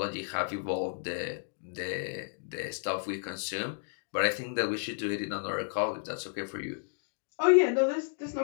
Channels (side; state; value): right; silent; digital silence